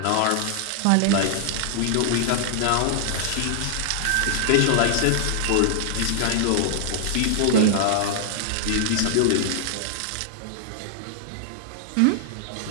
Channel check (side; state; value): both; different; correlation -0.01